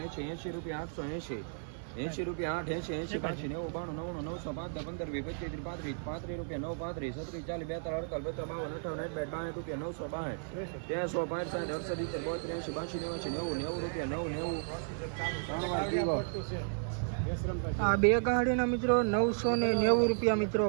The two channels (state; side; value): silent; left; 55 dB below the other